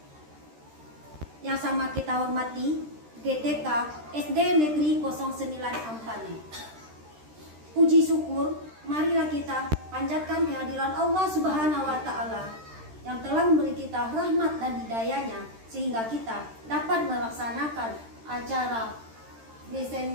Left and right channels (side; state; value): left; late; 13 ms